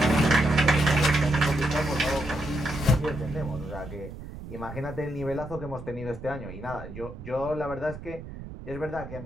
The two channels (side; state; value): right; noise; rumble, 12 dB below the sound